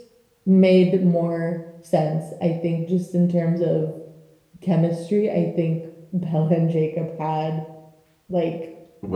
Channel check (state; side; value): identical; both; correlation 1.00